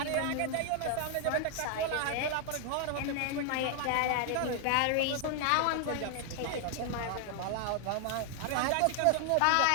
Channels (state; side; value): different; both; correlation 0.00